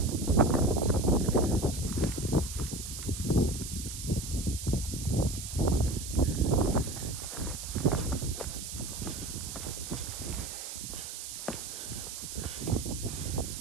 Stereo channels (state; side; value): noise; right; hiss, 8 dB below the sound